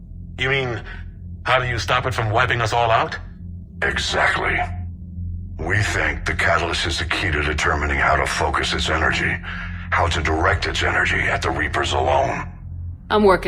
You mean, how do you stop it from wiping us all out? Exactly. We think the catalyst is the key to determining how to focus its energy, how to direct its energy at the Reapers alone. I'm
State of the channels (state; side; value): identical; both; correlation 1.00